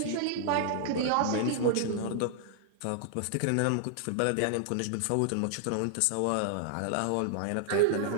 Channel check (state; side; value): different; both; correlation -0.01